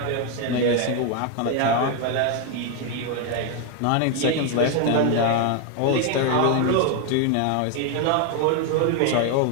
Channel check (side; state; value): both; different; correlation 0.01